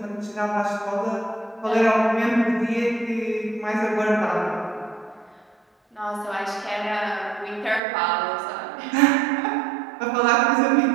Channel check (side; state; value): left; drops out; at 7.8 s